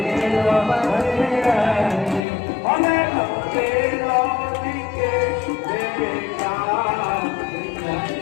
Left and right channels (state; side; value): drops out; right; at 2.2 s